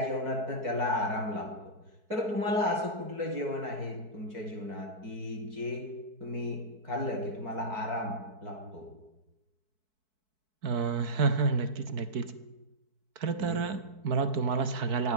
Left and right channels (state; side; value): late; left; 4.6 ms